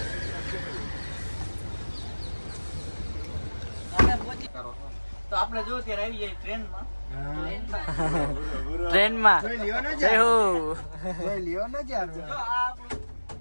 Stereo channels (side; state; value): both; inverted; correlation -1.00